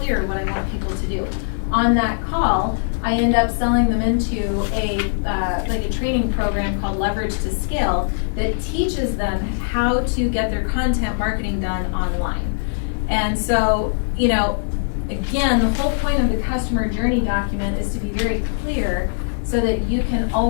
what I want people to do. on that call, I end up selling them into like a training program called Leverage to Scale that teaches them how to get their content marketing done online. And so, you know, again, the whole point of the customer journey document is to be very clear so that you can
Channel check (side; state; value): right; silent; digital silence